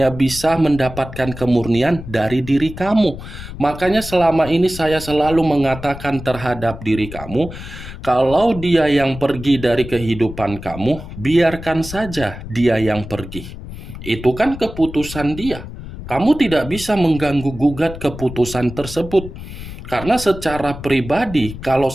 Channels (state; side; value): noise; left; rumble, 12 dB below the sound